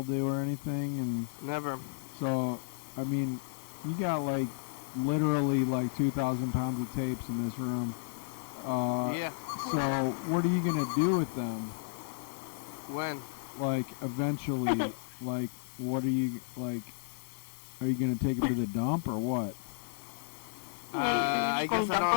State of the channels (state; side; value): silent; right; digital silence